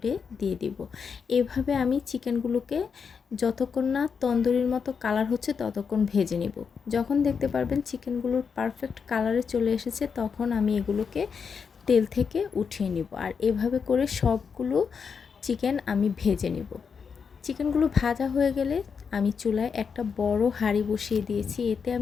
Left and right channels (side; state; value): right; quieter; 6.1 dB